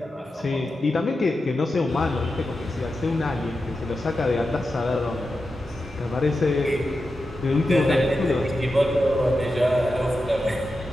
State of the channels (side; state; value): both; normal; correlation 0.90